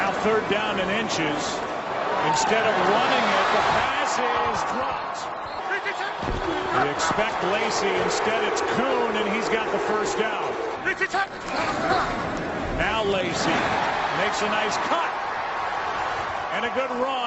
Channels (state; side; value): identical; both; correlation 1.00